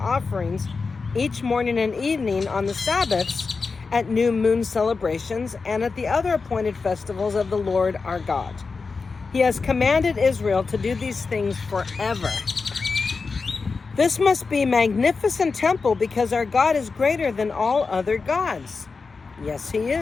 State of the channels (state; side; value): quieter; right; 4.5 dB